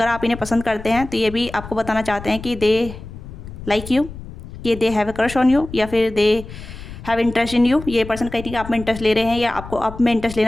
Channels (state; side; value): noise; left; rumble, 13 dB below the sound